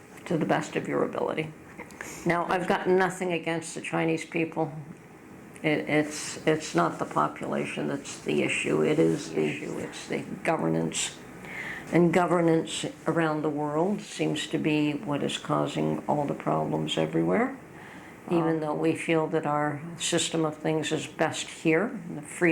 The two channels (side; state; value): both; identical; correlation 1.00